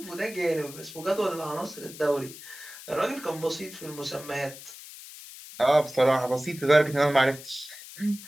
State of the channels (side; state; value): left; noise; hiss, 15 dB below the sound